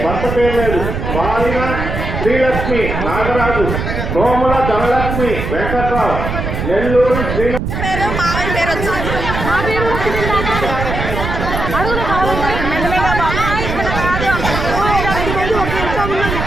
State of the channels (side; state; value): right; noise; rumble, 4 dB below the sound